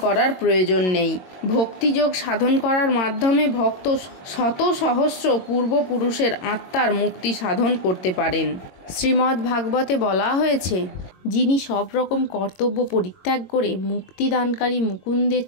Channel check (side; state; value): right; late; 22 ms